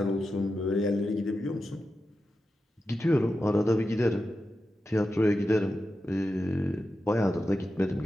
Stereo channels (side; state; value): both; normal; correlation 0.91